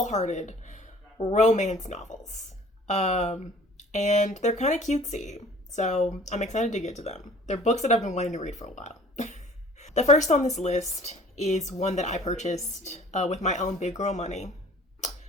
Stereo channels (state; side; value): normal; both; correlation 0.50